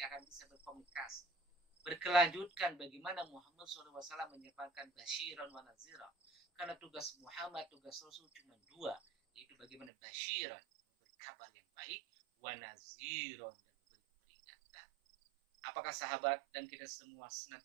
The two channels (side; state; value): left; drops out; at 9.9 s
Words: akan bisa berkomunikasi, berkelanjutkan bagaimana Muhammad SAW menyampaikan basyiran wa nazira. Karena tugas Muhammad, tugas Rasul cuma dua, yaitu bagaimana basyiran, memberi kabar yang baik, wa naziron, dan memberi peringatan. Apakah sahabat dan kita semua